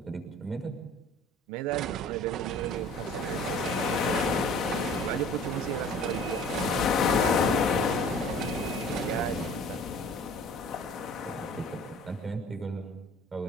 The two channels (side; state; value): both; normal; correlation 0.48